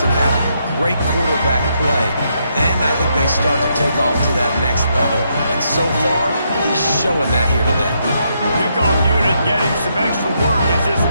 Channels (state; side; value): inverted; both; correlation -0.78